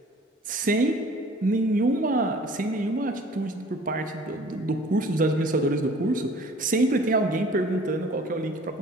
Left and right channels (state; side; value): normal; both; correlation 0.50